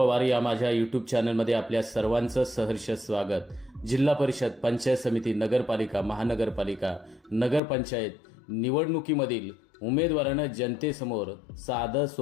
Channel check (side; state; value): right; drops out; at 7.6 s